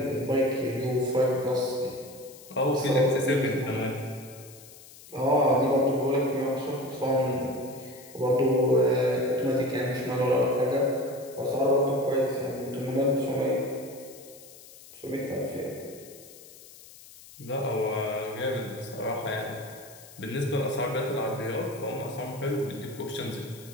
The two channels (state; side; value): noise; left; hiss, 20 dB below the sound